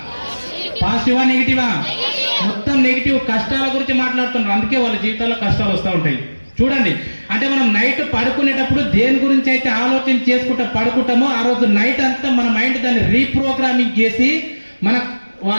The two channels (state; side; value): inverted; both; correlation -1.00